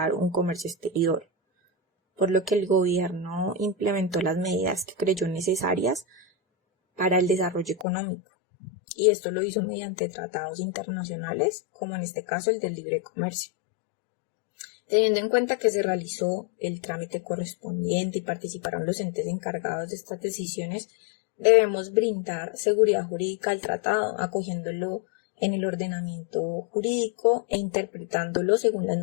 un comercio exterior, por lo que el gobierno implementó las medidas que creyó necesarias para el desarrollo económico, y esto lo hizo mediante tratados internacionales, como en este caso el del libre comercio. Teniendo en cuenta que se realizó el trámite correspondiente y participaron los entes encargados de estas decisiones, debemos brindar seguridad jurídica al tratado, acogiéndolo en el ordenamiento jurídico e interpretándolo según las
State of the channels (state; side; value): drops out; right; at 7.9 s